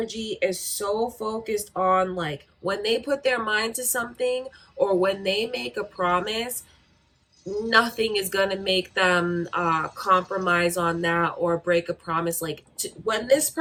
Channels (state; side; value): identical; both; correlation 1.00